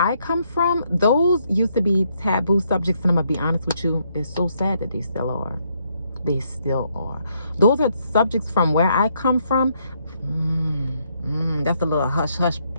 come from, those used to be taboo subjects, and I'm gonna be honest with you, it's so sad that they still are. They still are. Those are subjects from where I come from. That's a little hush hush.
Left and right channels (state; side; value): inverted; both; correlation -0.74